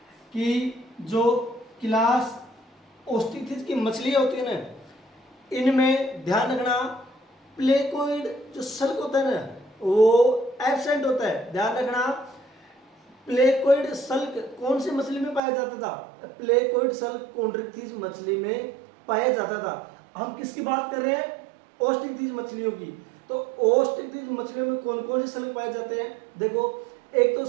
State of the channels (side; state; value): left; drops out; at 15.4 s